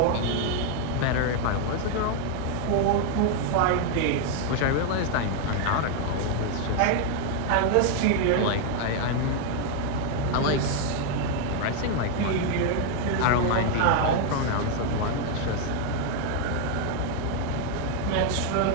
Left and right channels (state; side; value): different; both; correlation 0.00